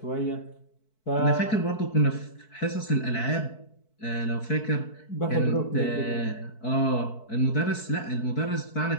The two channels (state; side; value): late; right; 4.6 ms